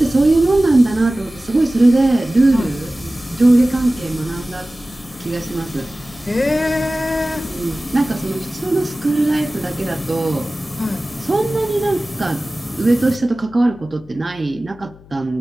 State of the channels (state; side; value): noise; left; hum, 24 dB below the sound